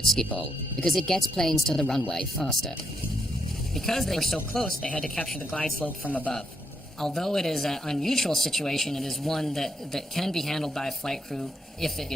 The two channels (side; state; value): both; normal; correlation 0.77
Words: Schiphol, because it gets planes to the runway faster. Because they were so close, they had to capture the glide slope from above. Although it is an unusual situation, it is one that can be handled by a flight crew if it